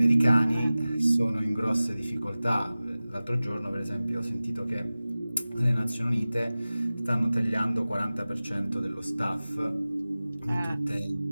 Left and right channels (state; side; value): inverted; both; correlation -0.97